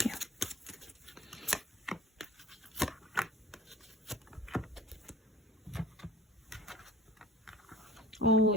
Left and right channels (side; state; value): both; normal; correlation 0.43